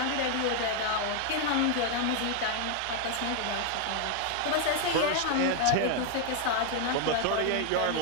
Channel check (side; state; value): both; different; correlation 0.00